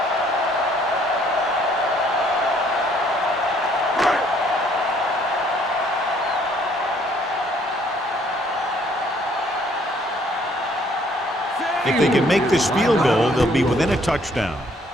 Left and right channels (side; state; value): both; normal; correlation 0.63